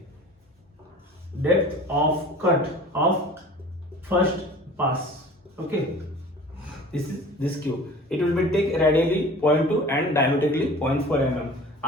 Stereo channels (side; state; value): both; normal; correlation 0.42